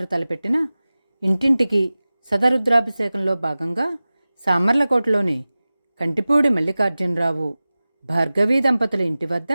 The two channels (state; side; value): inverted; both; correlation -0.97